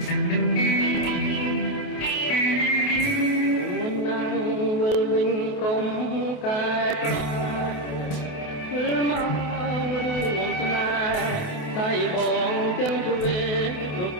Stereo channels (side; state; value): right; late; 28 ms